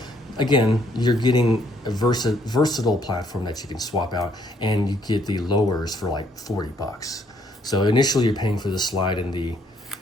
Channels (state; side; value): normal; both; correlation 0.68